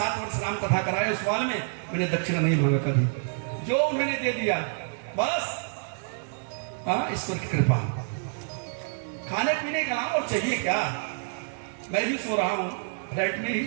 वर्ष राम कथा कराए, उस साल में मैंने दक्षिणा नहीं मांगा कभी, जो उन्होंने दे दिया बस ईश्वर की कृपा। खाने पीने का और चाहिए क्या? मैं भी सो रहा हूं फ्लैट में ही।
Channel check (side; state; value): left; silent; digital silence